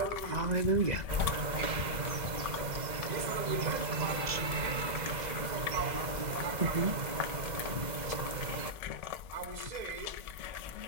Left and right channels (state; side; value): late; left; 2.0 ms